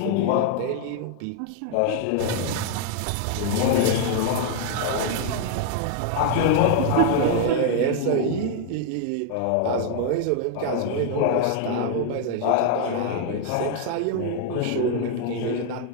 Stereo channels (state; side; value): different; both; correlation 0.00